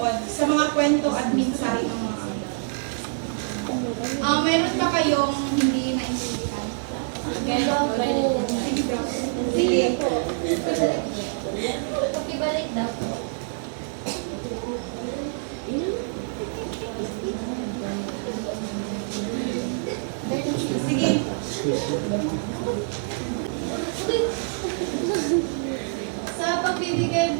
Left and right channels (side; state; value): left; silent; 57 dB below the other